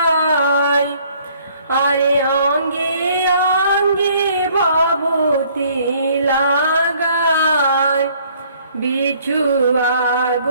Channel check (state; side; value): inverted; both; correlation -0.60